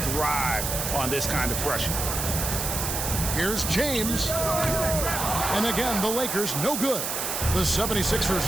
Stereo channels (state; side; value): noise; right; hiss, 2 dB below the sound